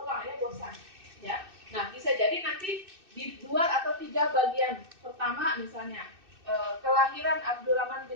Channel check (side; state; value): left; late; 2.6 ms